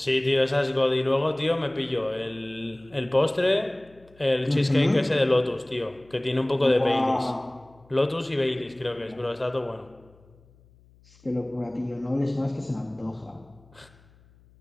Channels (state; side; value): noise; left; hum, 28 dB below the sound